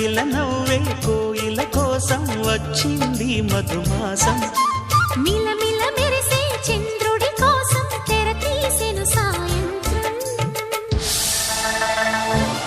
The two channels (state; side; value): identical; both; correlation 1.00